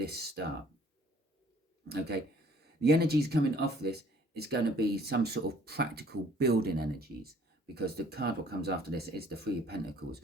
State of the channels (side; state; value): both; normal; correlation 0.57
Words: start. Okay, the energies coming off this is going to be some sort of practical building energies, because the card what comes after this is the Three of Pentacles,